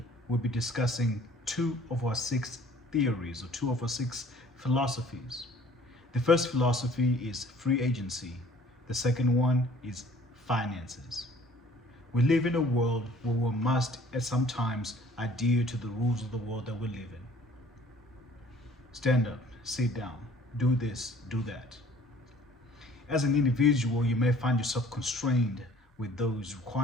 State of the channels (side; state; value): both; normal; correlation 0.54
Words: we'll be discussing 2 of our 6 theories or 2 of our 6 philosophies. The first philosophy is free agency, the second one is finances. We live in a world where we must at some times adhere to the rules of the world that we live in. Stand up, sit down, do this, do that. As an individual, you may find yourself constrained with those